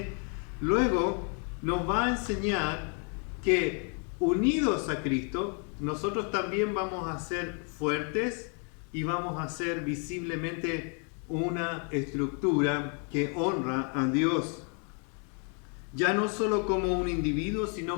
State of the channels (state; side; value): quieter; right; 39.9 dB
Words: luego nos va a enseñar que unidos a Cristo, nosotros también vamos a ser fuertes y vamos a ser visiblemente una estructura que honra a Dios. Ya no solo como un individuo,